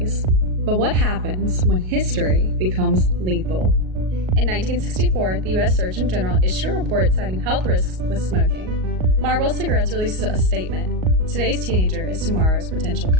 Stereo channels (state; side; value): late; left; 38 ms